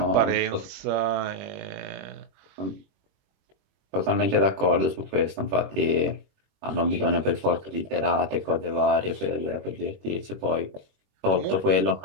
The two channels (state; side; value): late; left; 21 ms